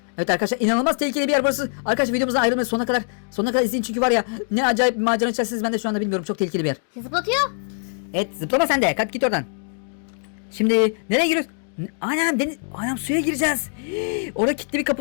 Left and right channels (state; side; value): silent; right; 64 dB below the other